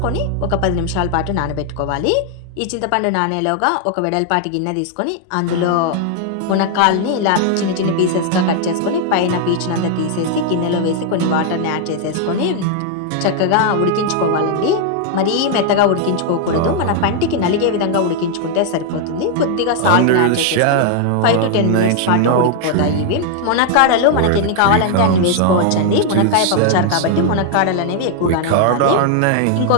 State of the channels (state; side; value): different; both; correlation 0.00